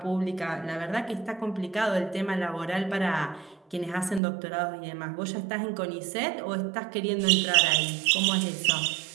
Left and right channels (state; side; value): drops out; left; at 4.2 s